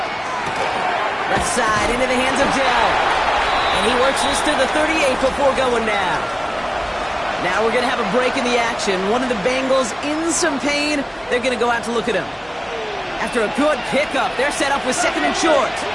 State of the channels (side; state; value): both; identical; correlation 1.00